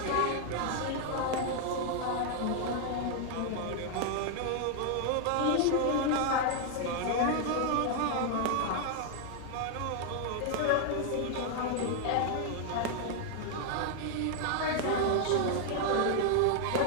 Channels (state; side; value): different; both; correlation 0.00